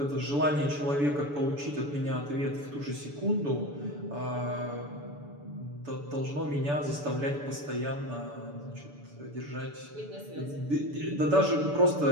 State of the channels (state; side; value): late; left; 6.9 ms